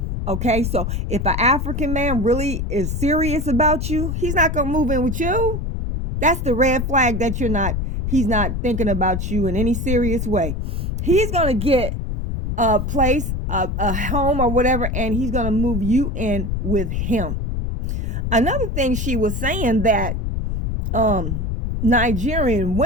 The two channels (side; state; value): left; noise; rumble, 2 dB below the sound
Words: Okay, so if an African man really is serious about you, he's not going to move in with you. That's the red flag that he's not thinking about you in any serious way. He's going to get a place, a home or whatever, and he's going to move you in with him. Another thing she was saying that Nigerian